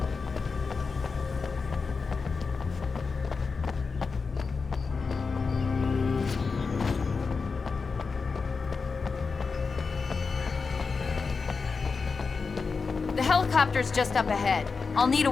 The helicopter's just up ahead. I'll need a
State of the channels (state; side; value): quieter; right; 4.8 dB